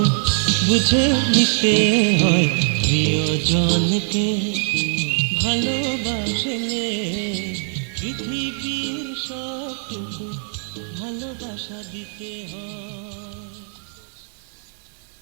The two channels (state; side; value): silent; left; 59 dB below the other